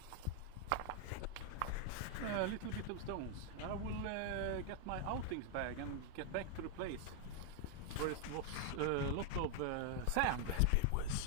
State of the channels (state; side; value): different; both; correlation 0.00